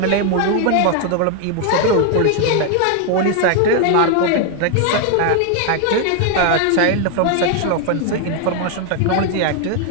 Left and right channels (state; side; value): different; both; correlation 0.00